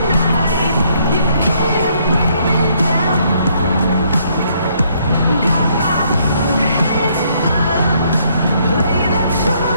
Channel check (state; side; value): inverted; both; correlation -0.69